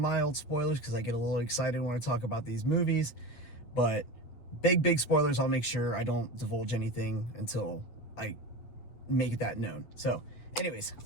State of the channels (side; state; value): right; late; 8.5 ms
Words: spoilers because I get a little excited when I talk about these movies. But big spoilers, I'll make sure I don't divulge anything until I make that known. So anyways,